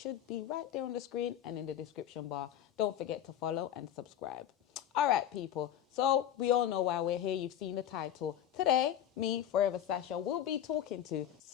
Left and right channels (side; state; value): right; quieter; 10.5 dB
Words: be right there on the screen and in the description bar. Don't forget to follow and subscribe. All right, people. So we all know why we're here. You've seen the title. Today, me, Forever Sasha, will be talking to